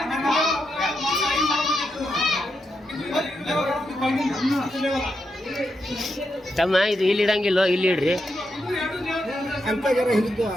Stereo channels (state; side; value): normal; both; correlation 0.84